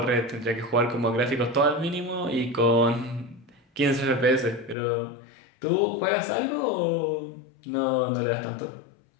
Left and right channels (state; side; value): drops out; right; at 4.8 s